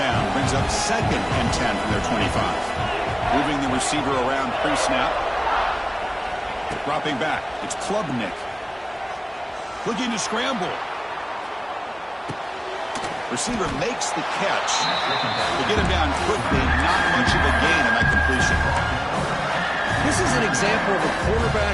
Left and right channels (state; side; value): identical; both; correlation 1.00